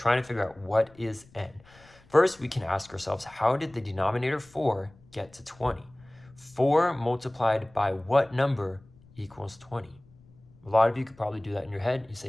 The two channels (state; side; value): noise; left; rumble, 27 dB below the sound